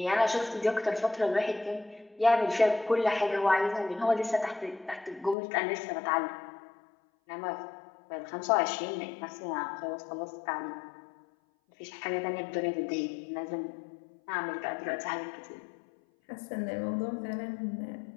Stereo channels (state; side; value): drops out; right; at 5.4 s